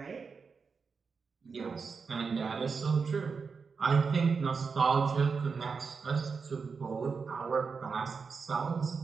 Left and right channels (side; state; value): left; quieter; 5.2 dB